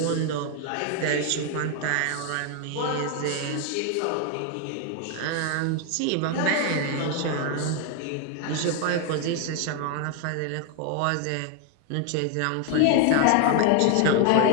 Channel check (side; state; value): both; different; correlation 0.00